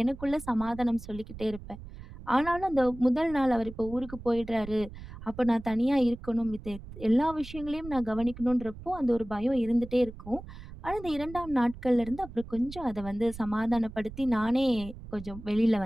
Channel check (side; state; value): right; noise; rumble, 14 dB below the sound